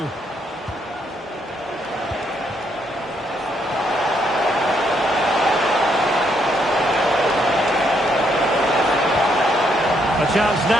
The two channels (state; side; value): normal; both; correlation 0.74